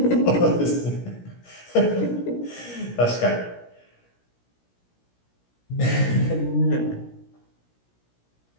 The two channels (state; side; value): late; right; 17 ms